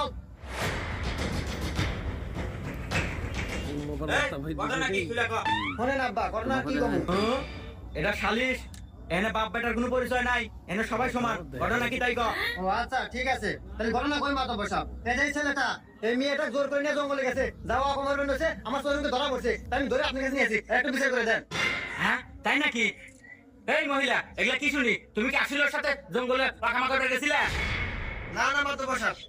এটা সালিশ এনে বাপ বেটার কোনো পরিচয় নাই এনে সবাই সমান ঘটনা কি তাই কও ও আচ্ছা ঠিক আছে তাহলে ঘটনা কই মাথা বসাও এই ছেলেটা এই মেয়েটা জোর করে নিয়ে জঙ্গলে গেছে যাওয়া অপমান হয়েছে আমার শরীরকে ধরা পড়ছে তাই আমি ধরে আপনার কাছে নিয়েছি একটু বিচার করে দেন হ্যাঁ তাই নাকি এই মহিলা এগুলা কি শুনি তুমি কি আসলের সাথে জঙ্গলে পাখামা করে গেছিলে না না মাত্র বসাব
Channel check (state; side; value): identical; both; correlation 1.00